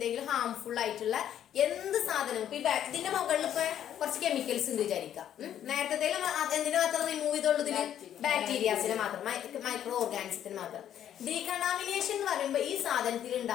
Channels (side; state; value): right; quieter; 10.4 dB